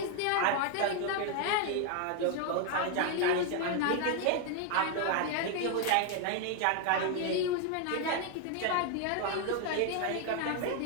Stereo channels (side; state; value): both; different; correlation 0.00